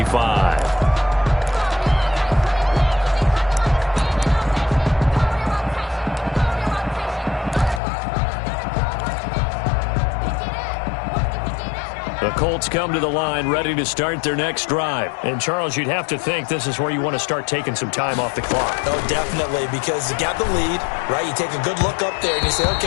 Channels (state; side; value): drops out; right; at 7.8 s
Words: Colts come to the line ready to start their next drive. And, Charles, you'd have to think this is where you want to start taking some time off the clock. Oh, definitely, because you got the lead, right? You take a good look up there and you say,